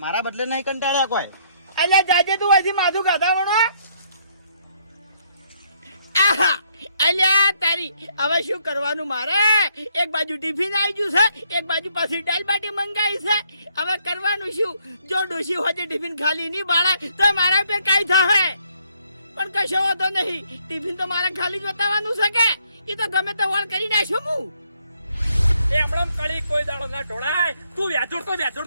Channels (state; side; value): inverted; both; correlation -0.70